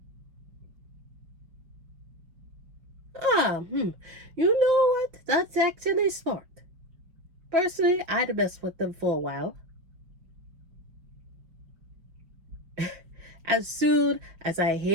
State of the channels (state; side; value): late; left; 5.4 ms